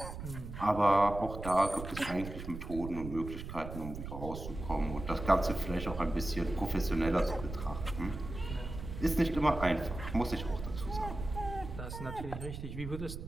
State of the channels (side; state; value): right; noise; rumble, 9 dB below the sound